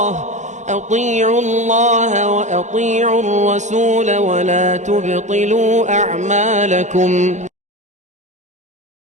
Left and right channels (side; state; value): left; late; 0.34 ms